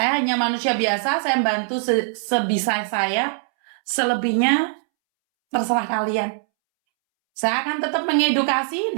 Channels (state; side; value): silent; left; 64 dB below the other